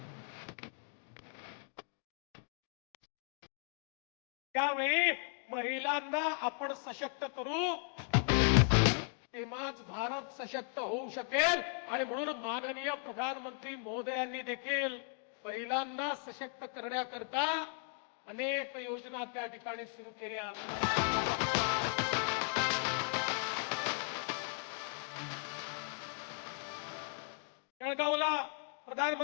त्यावेळी महिलांना आपण सशक्त करू, तेव्हाच भारत सशक्त होऊ शकेल. आणि म्हणून माननीय प्रधानमंत्री महोदयांनी देखील महिलांना सशक्त करण्याकरता अनेक योजना त्या ठिकाणी सुरू केल्या. जळगावला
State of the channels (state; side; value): silent; right; 53 dB below the other